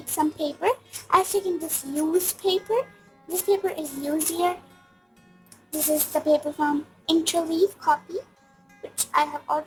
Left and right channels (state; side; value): identical; both; correlation 1.00